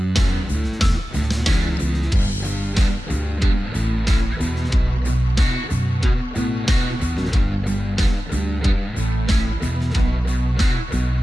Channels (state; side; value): normal; both; correlation 0.94